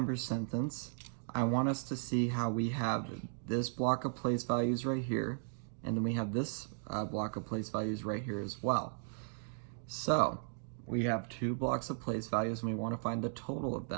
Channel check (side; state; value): left; silent; digital silence